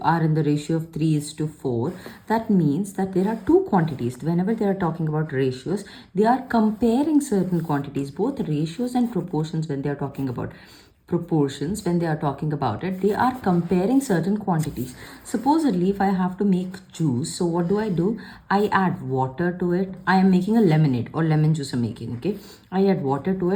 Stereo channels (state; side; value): identical; both; correlation 1.00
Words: are in the ratio of 3 is to 4, that means that there are two quantities. Whenever they are talking about ratios, they are comparing certain quantities, both ratios and proportions. When they are talking about proportions, when they are talking about it, they are comparing certain quantities. Supposedly, if I have to make juice, so what do? I add water to it. I am making a lemonade or lemon juice I'm making, okay? I add water to